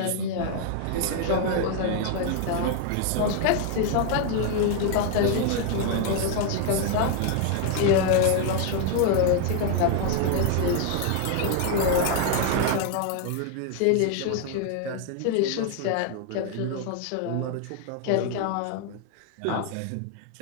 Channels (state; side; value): different; both; correlation 0.00